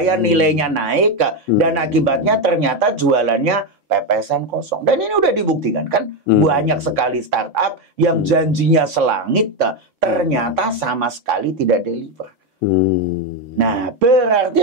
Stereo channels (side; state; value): both; normal; correlation 0.09